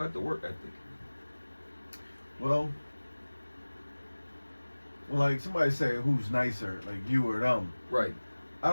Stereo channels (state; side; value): inverted; both; correlation -1.00